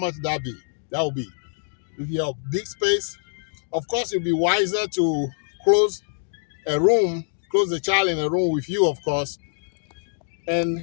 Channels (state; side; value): silent; right; 62 dB below the other